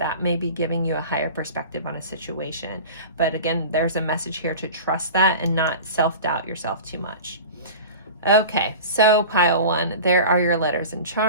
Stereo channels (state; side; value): inverted; both; correlation -0.35